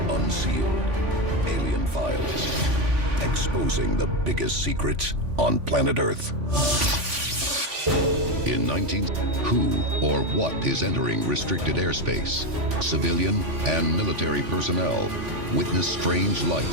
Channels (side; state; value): left; late; 3.6 ms